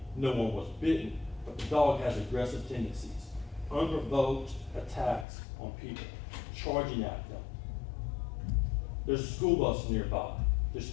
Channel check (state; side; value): drops out; right; at 5.2 s